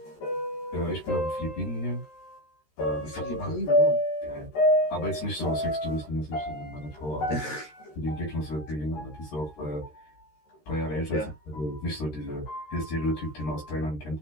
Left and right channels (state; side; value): late; right; 13 ms